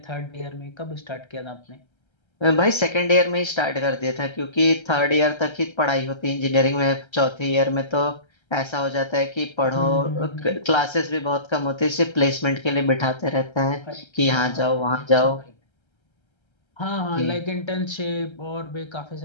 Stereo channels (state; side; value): late; right; 1.3 ms